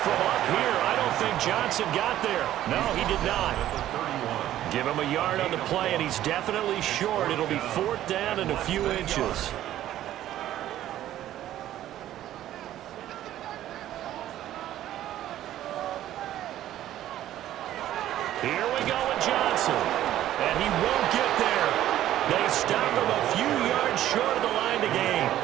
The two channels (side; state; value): left; quieter; 12.9 dB